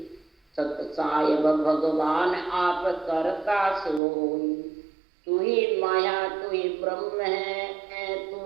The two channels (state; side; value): drops out; left; at 4.0 s